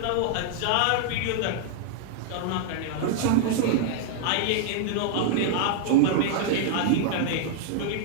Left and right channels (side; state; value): both; different; correlation -0.01